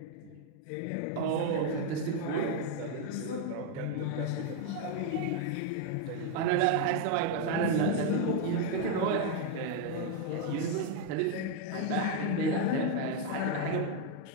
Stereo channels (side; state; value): both; different; correlation 0.01